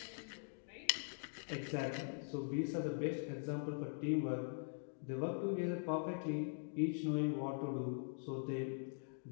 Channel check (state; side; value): silent; right; digital silence